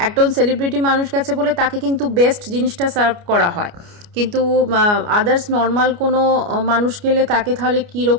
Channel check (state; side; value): late; left; 29 ms